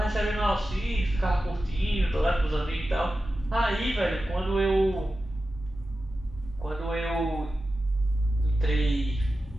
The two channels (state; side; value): normal; both; correlation 0.93